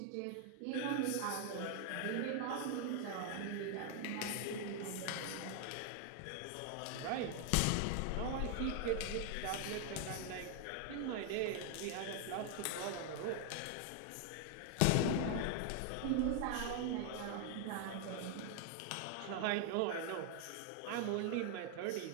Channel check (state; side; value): different; both; correlation 0.00